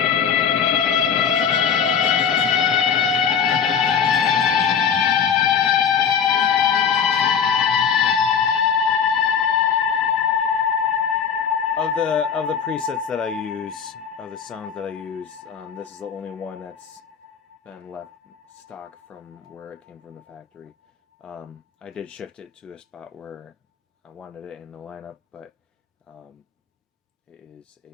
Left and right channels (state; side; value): quieter; right; 7.2 dB